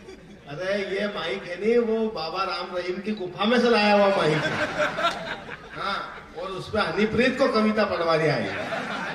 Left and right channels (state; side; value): identical; both; correlation 1.00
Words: अरे ये माइक है नहीं, वो बाबा राम रहीम की गुफा में से लाया हुआ माइक है। हाँ, और उसपे हनीप्रीत को कविता पढ़वा दिया है।